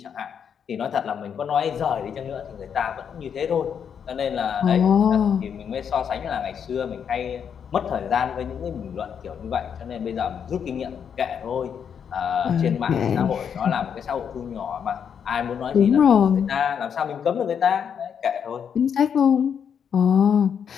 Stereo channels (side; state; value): right; quieter; 7.6 dB